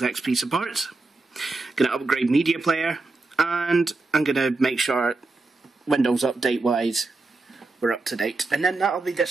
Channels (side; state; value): left; quieter; 3.4 dB